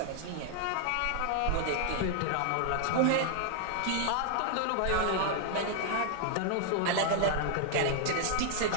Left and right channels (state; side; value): different; both; correlation 0.00